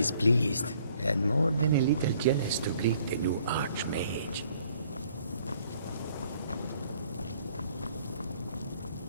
pleased, and more than a little jealous to greet the new Archmage.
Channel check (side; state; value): both; inverted; correlation -0.62